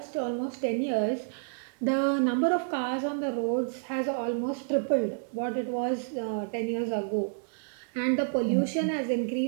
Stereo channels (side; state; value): left; silent; digital silence